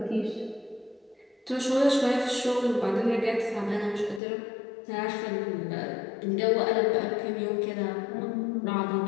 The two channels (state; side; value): drops out; right; at 4.2 s